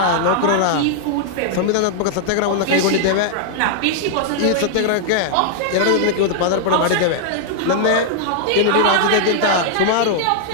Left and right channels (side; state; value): both; different; correlation 0.00